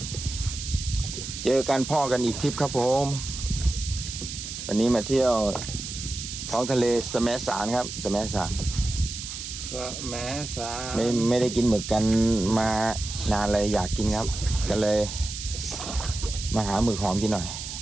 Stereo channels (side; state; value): right; noise; hiss, 8 dB below the sound